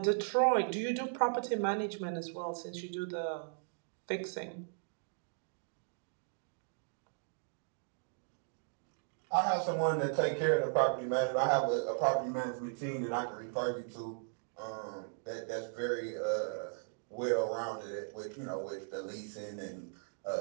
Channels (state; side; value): silent; left; digital silence